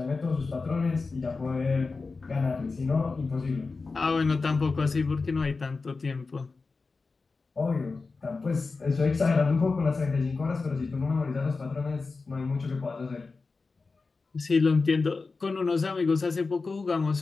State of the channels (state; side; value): quieter; right; 4.1 dB